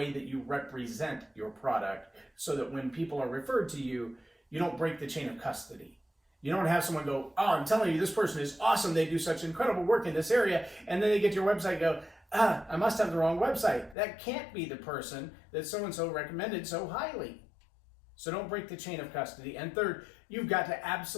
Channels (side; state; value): right; drops out; at 14.0 s